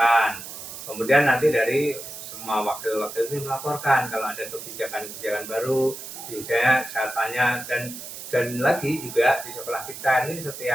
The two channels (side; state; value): right; noise; hiss, 11 dB below the sound